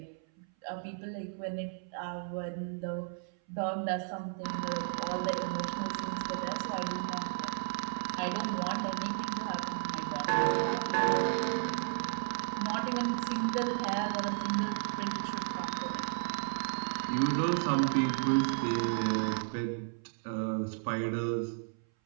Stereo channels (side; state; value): left; silent; 55 dB below the other